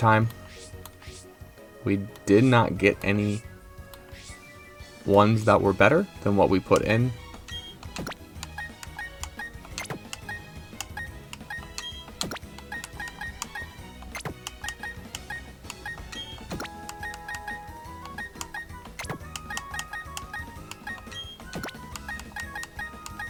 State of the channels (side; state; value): both; identical; correlation 1.00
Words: we did not get any ones that were better than what we put in.